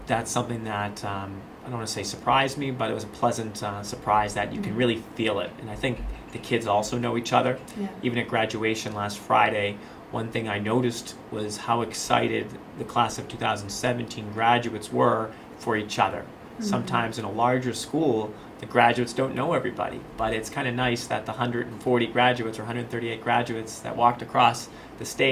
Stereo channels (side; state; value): both; identical; correlation 1.00